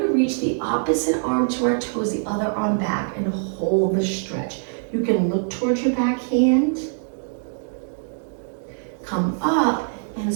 reach the opposite arm to our toes, the other arm back, and hold the stretch. You can look towards your back hand, come up, and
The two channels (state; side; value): silent; left; digital silence